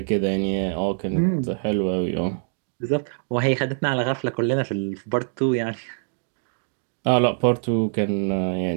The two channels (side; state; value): left; silent; digital silence